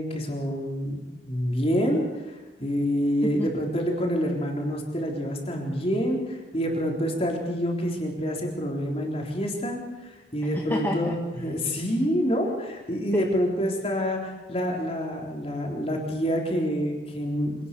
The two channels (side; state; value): both; normal; correlation 0.70